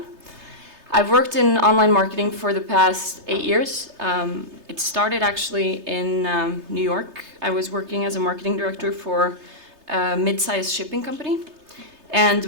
I've worked in online marketing for the past 8 years. It started actually in New York. I was working as a marketing director for a mid-sized shipping company. And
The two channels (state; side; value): late; left; 3.3 ms